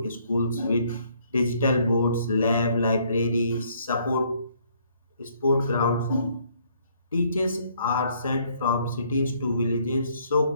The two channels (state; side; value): inverted; both; correlation -0.66